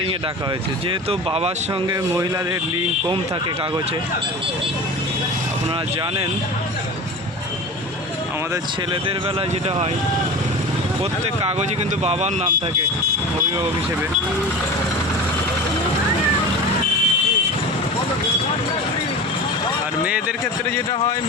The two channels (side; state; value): both; normal; correlation 0.32